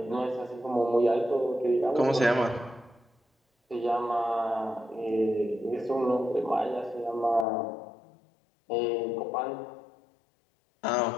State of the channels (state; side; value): drops out; right; at 7.5 s